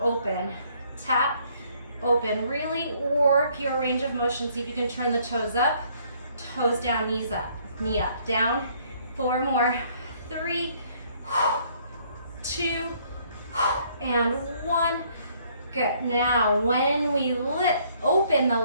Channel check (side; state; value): both; inverted; correlation -0.64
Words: tap, open. Really work your range of motion. See if you can turn the toes up, toes down, knees up, knee up, down. 4 more. 3, 2, and 1. Good. Now, when we open the